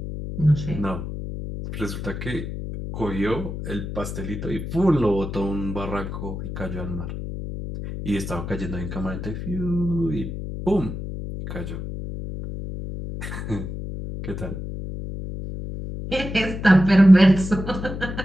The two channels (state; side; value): noise; left; hum, 7 dB below the sound